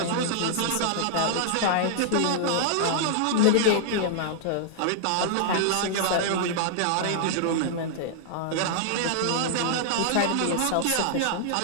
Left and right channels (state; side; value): different; both; correlation -0.01